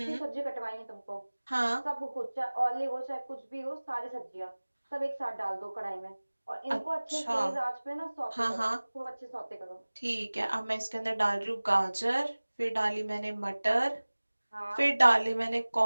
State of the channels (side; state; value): both; inverted; correlation -1.00